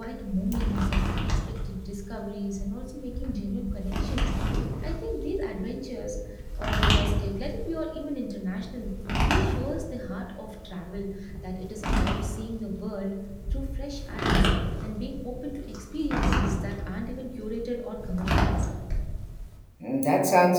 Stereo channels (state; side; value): identical; both; correlation 1.00